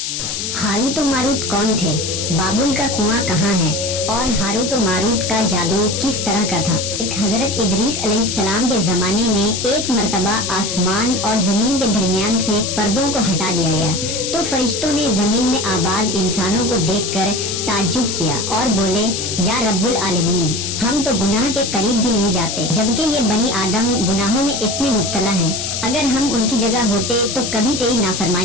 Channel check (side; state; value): left; noise; hiss, 3 dB below the sound